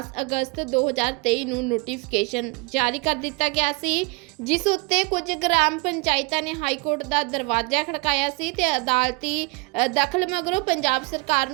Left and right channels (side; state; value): left; quieter; 28.5 dB